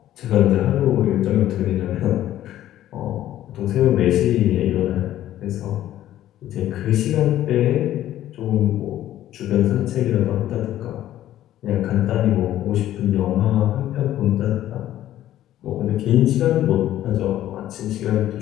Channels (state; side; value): quieter; right; 12.9 dB